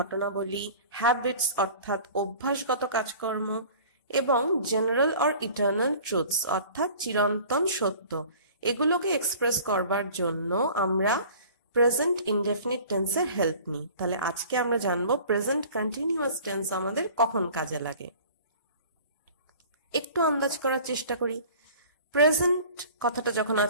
হ্যাবিটস অর্থাৎ অভ্যাসগত কাজকর্ম এবং জেনারেল অর ইটার্নাল ট্রুথস অর্থাৎ চিরন্তন সত্য, এগুলোকে এক্সপ্রেস করবার জন্য আমরা প্রেজেন্ট ইনডেফিনিট টেন্সের হেল্প নিই। তাহলে আজকে আমরা জানবো প্রেজেন্ট কন্টিনিউয়াস টেন্স আমাদের কখন কাজে লাগে। একটু আন্দাজ করার চেষ্টা করি। প্রেজেন্ট কথাটা যখন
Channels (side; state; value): both; inverted; correlation -0.45